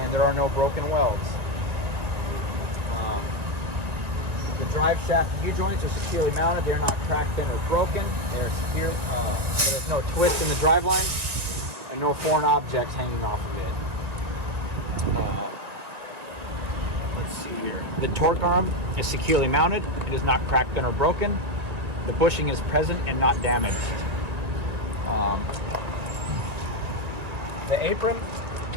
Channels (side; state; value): left; late; 1.9 ms